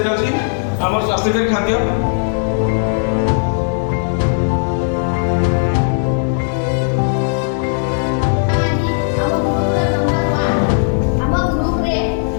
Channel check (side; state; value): right; silent; 57 dB below the other